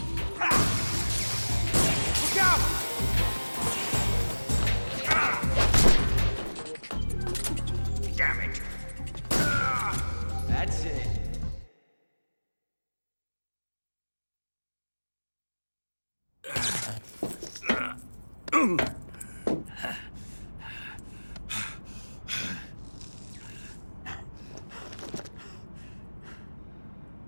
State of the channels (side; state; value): both; inverted; correlation -1.00